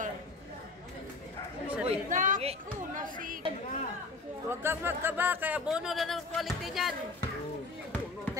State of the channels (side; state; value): right; quieter; 3.5 dB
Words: Uy, Naku, nasig. Huwag kang magkaba, kaya bono na ng quality niyan.